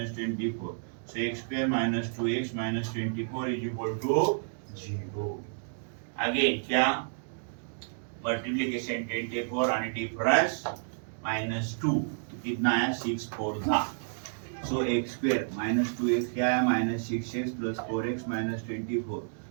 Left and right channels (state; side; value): silent; left; digital silence